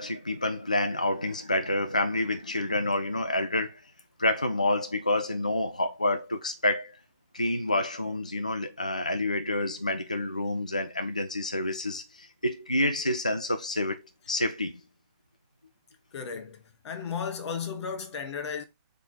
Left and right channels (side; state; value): both; inverted; correlation -0.68